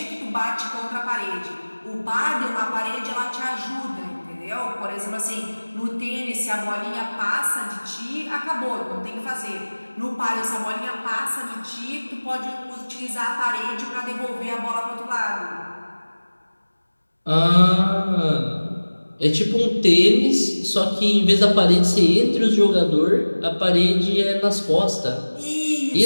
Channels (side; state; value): both; inverted; correlation -1.00